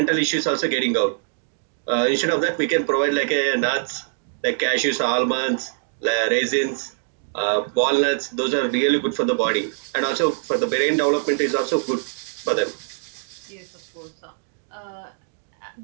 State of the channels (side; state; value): left; silent; digital silence